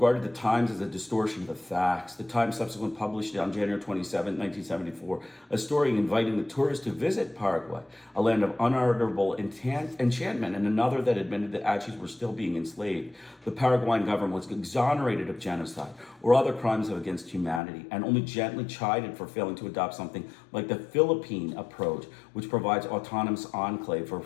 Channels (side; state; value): right; drops out; at 17.6 s